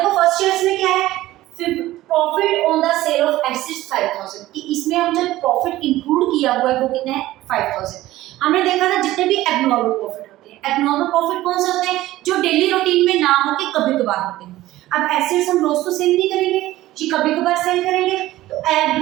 फर्स्ट ईयर में क्या है, profit on the sale of assets 5,000, कि इसमें हम जो प्रॉफिट इंक्लूड किया हुआ है वो कितना है, 5,000। हमने देखा था जितने भी एबनॉर्मल प्रॉफिट होते हैं, एबनॉर्मल प्रॉफिट कौन से होते हैं, जो डेली रूटीन में ना हो के कभी कभार होते हैं। अब एसेट्स हम रोज तो सेल नहीं करेंगे, जी कभी कभार सेल करेंगे, तो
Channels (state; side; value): quieter; left; 16.0 dB